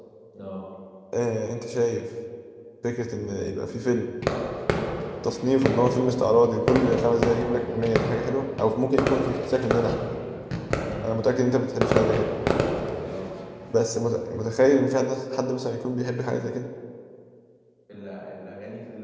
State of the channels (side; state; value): both; identical; correlation 1.00